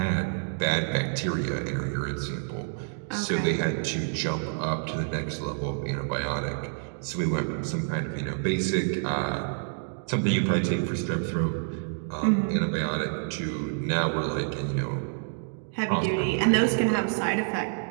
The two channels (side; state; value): left; silent; digital silence